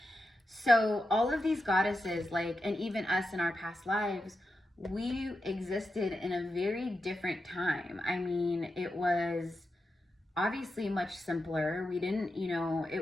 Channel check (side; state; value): both; normal; correlation 0.89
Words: So all of these goddesses, like, and even us in our past lives, we existed in a very different time. I mean, it was obviously much simpler. We didn't, you know,